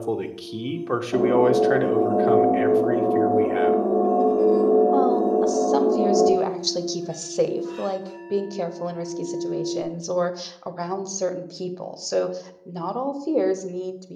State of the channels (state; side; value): identical; both; correlation 1.00